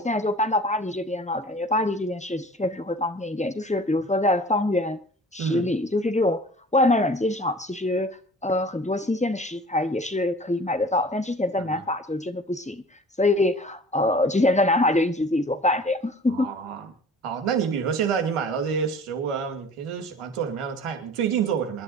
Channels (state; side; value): normal; both; correlation 0.44